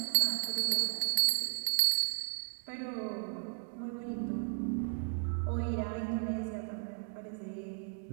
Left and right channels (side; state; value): left; silent; 54 dB below the other